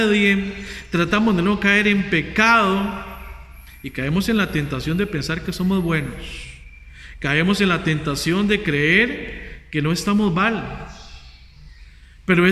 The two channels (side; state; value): both; identical; correlation 1.00